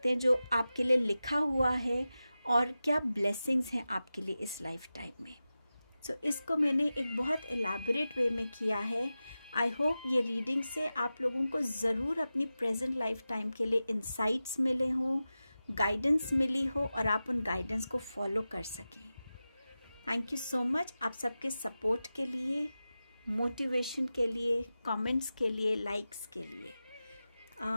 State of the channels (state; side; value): inverted; both; correlation -0.94